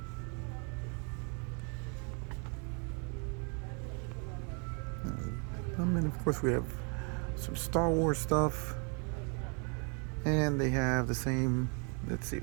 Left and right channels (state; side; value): quieter; left; 37.4 dB